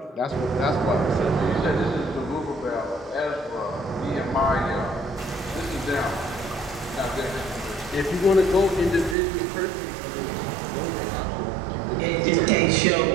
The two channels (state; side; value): drops out; left; at 9.2 s